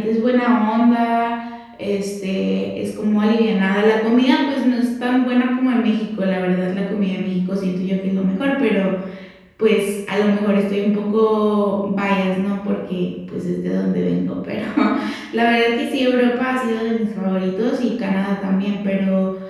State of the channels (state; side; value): identical; both; correlation 1.00